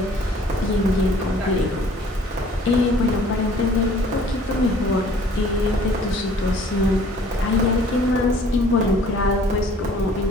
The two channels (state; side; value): normal; both; correlation 0.54